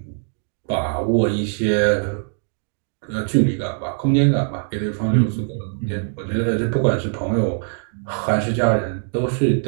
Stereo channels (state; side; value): silent; left; 64 dB below the other